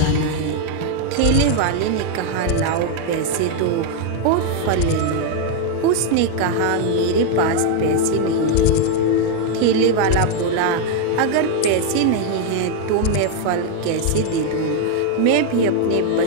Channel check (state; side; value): different; both; correlation 0.00